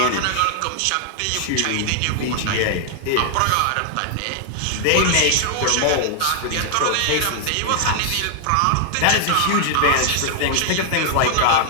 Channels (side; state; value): both; different; correlation 0.00